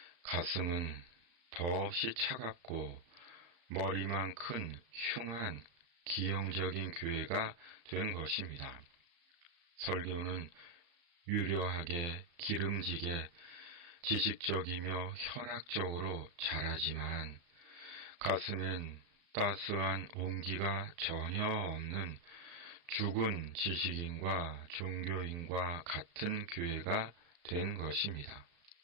가슴은 더없이 차갑고 머리만 큰 흉한 기형적인 교회가 된 것입니다. 설교는 유려하게 기름지게 지식적이며 현학적으로 잘하지만 가슴엔 따스한 온기가 전혀 없는 죽은 지식인과 종교인과 같은 교회가 된 것입니다.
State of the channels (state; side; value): late; left; 35 ms